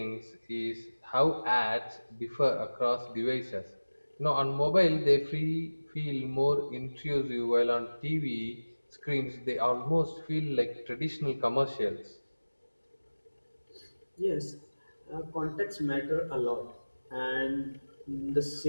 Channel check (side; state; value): both; inverted; correlation -1.00